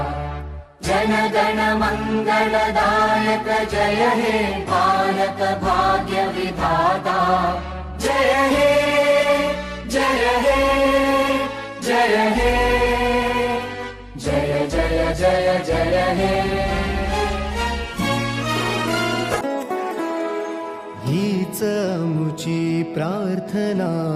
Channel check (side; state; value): both; identical; correlation 1.00